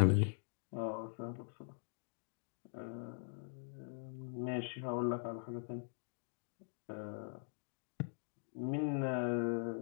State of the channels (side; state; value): right; silent; digital silence